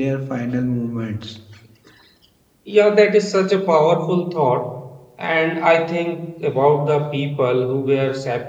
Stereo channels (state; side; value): identical; both; correlation 1.00